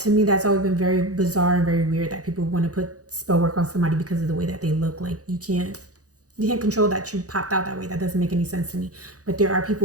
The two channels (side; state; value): left; late; 0.67 ms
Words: me, that's always been very bizarre and very weird that people want to put spell work on somebody because of the way that they look. Like you can't control that you popped out that way. That doesn't make any sense to me. But there are